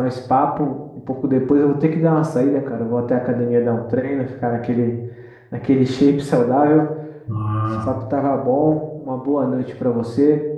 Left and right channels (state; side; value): identical; both; correlation 1.00